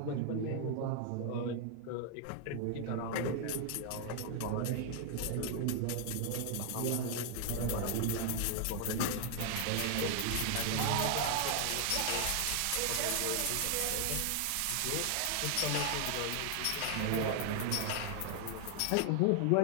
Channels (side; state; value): both; different; correlation 0.00